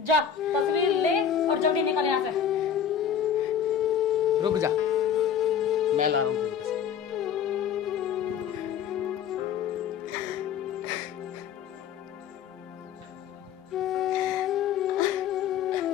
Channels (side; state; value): right; quieter; 8.2 dB